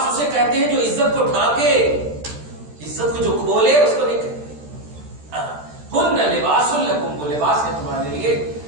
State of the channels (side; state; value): left; late; 13 ms